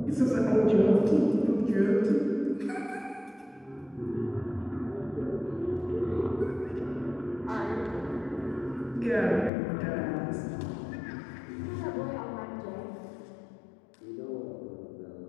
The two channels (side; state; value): right; drops out; at 9.5 s